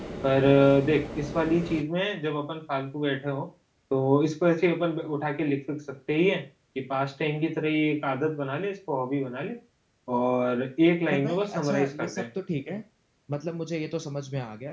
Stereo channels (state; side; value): identical; both; correlation 1.00